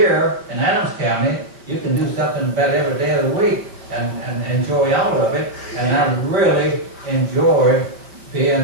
in Adams County, you can do something about every day of the week and enjoy all of it. And I really enjoy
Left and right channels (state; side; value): late; left; 5.0 ms